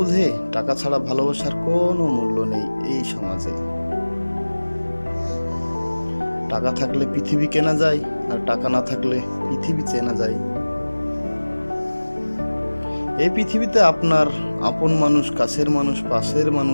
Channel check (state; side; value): inverted; both; correlation -1.00